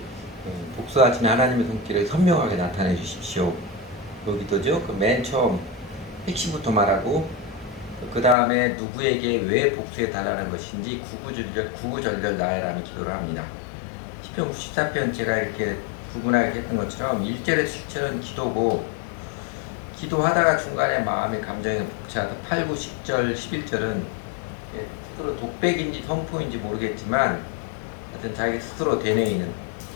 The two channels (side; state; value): right; drops out; at 8.3 s